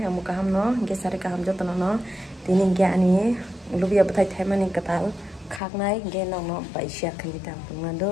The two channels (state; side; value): drops out; right; at 5.6 s